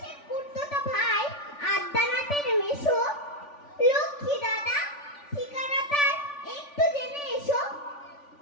কুর্তোটা ভাই আদ্যানাথের মেশো। লক্ষ্মী দাদা, ঠিকানা তার একটু জেনে এসো।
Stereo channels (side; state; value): right; late; 3.4 ms